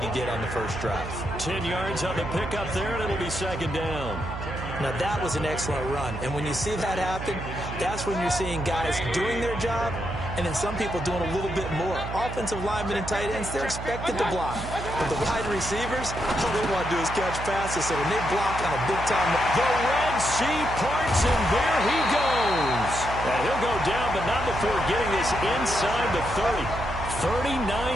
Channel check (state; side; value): noise; right; hum, 8 dB below the sound